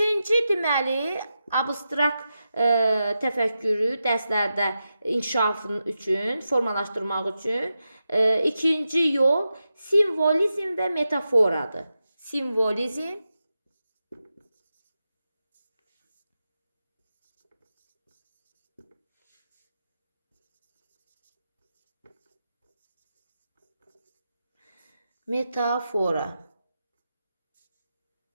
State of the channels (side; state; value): both; inverted; correlation -0.90